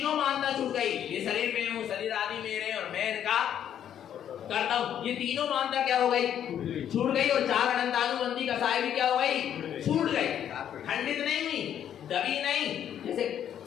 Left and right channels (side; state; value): right; quieter; 9.8 dB